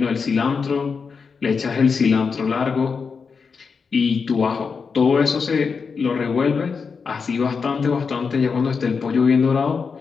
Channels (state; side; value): quieter; right; 5.4 dB